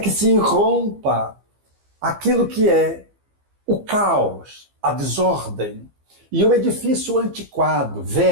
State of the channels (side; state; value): left; late; 15 ms